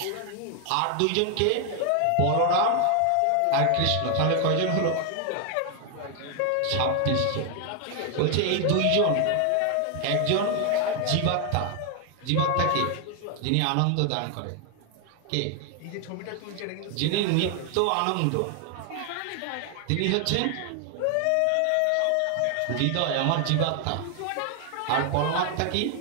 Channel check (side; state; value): both; different; correlation 0.00